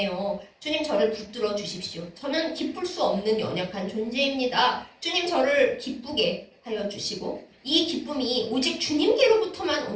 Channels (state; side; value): identical; both; correlation 1.00